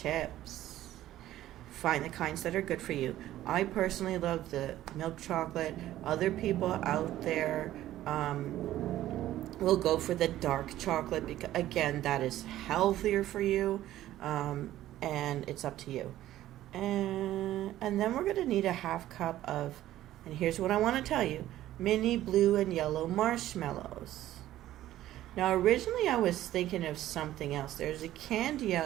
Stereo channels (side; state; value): left; quieter; 13.8 dB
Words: Find the kinds that are good for you. I personally love the milk chocolate. Other people out there will go for the dark chocolate because, again, that is healthier for you, and it's up to you. And then we're going to need a 1/2 cup of, and here's what I want to tell you, mini blue and yellow marshmallows. Now, originally I was thinking of something else. There's a candy